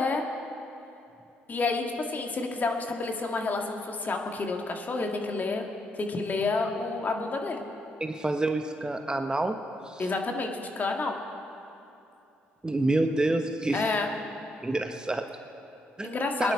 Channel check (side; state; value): both; normal; correlation 0.78